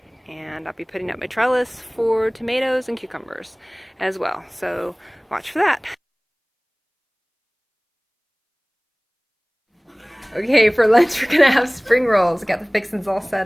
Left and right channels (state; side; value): identical; both; correlation 1.00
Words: And I'll be putting up my trellis for tomatoes and cucumbers as well. So watch for that. Okay, for lunch we're gonna have spring rolls. Got the fixins all set